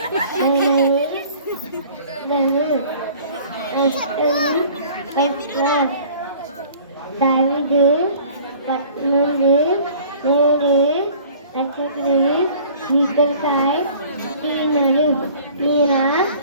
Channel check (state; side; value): inverted; both; correlation -0.49